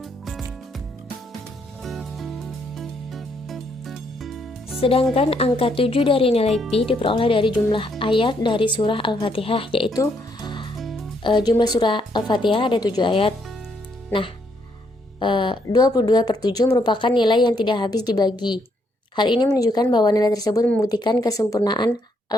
Sedangkan angka 7 dari nilai pi diperoleh dari jumlah ayat dari surah Al-Fatihah, yaitu jumlah surah Al-Fatihah ada 7 ayat. Nah, 22/7 merupakan nilai yang tidak habis dibagi. Hal ini menunjukkan bahwa nilai tersebut membuktikan kesempurnaan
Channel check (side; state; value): both; normal; correlation 0.73